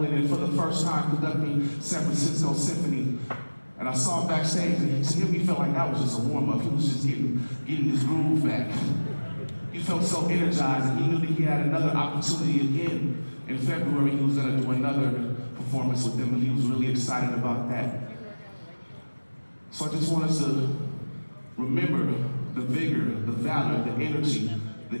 and for the first time conducting San Francisco Symphony. And I saw him backstage, and to him he felt like that was just a warm-up. He was just getting his groove back. He felt so energized, and he knew that he had another opportunity again. In February, he was going to do another performance with them, and he was really excited about that. So I just want us to remember the vigor, the valor, the energy, the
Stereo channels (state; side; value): inverted; both; correlation -1.00